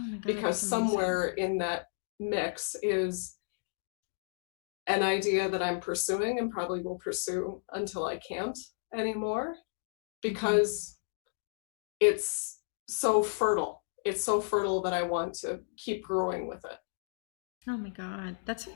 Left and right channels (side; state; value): right; silent; digital silence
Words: my God, because that's amazing. somewhere in that mix is an idea that I'm pursuing and probably will pursue until I can't anymore, because it's so fertile. It's so fertile that I want to keep growing with it. Oh my God, that's